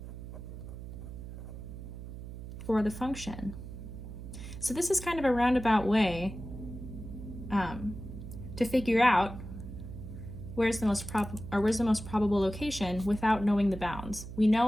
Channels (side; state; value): right; noise; hum, 10 dB below the sound